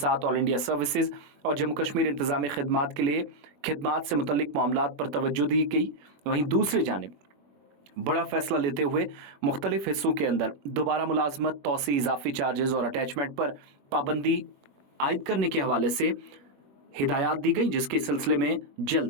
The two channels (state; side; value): late; left; 21 ms